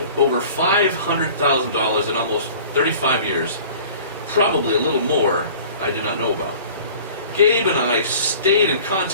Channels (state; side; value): inverted; both; correlation -0.46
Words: over $500,000 in almost 35 years, probably a little more I do not know about. Gabe and I stayed in